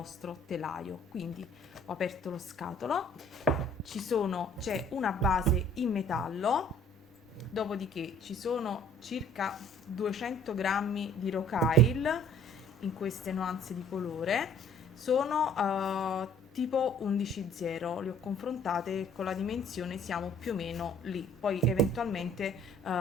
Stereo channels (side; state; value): both; normal; correlation 0.55